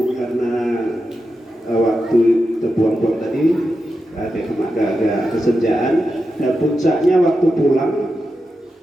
karena waktu terbuang-buang tadi agak kesenjaan, dan puncaknya waktu pulang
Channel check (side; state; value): both; normal; correlation 0.89